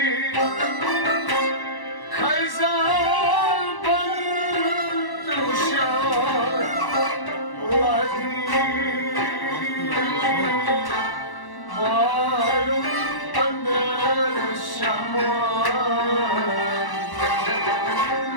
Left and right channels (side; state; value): right; late; 1.1 ms